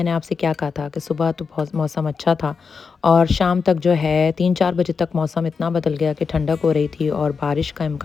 आपसे क्या कहा था कि सुबह तो बहुत मौसम अच्छा था और शाम तक जो है 3-4 बजे तक मौसम इतना बदल गया कि ठंडक हो रही थी और बारिश का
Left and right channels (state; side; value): quieter; right; 5.3 dB